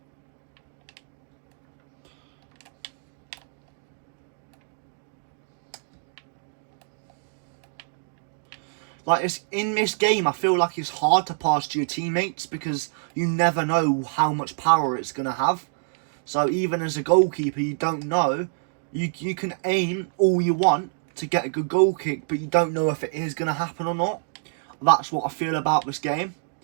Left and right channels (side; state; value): left; silent; digital silence